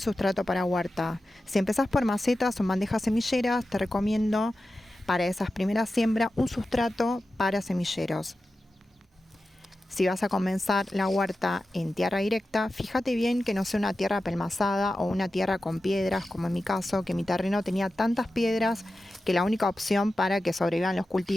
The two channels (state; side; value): normal; both; correlation 0.93